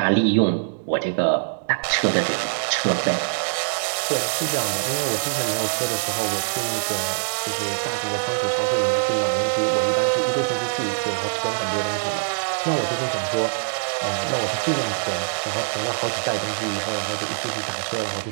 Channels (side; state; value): left; silent; digital silence